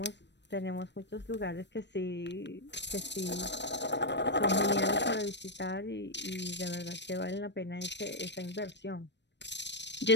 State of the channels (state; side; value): late; right; 0.51 ms